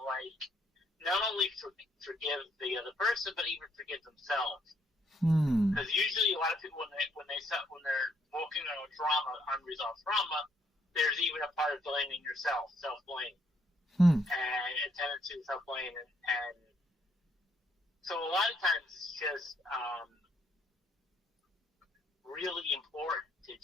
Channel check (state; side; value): normal; both; correlation 0.71